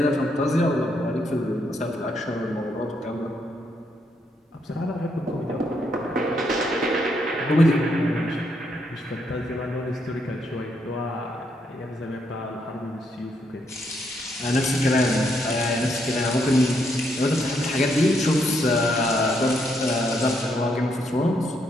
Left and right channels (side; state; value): both; normal; correlation 0.76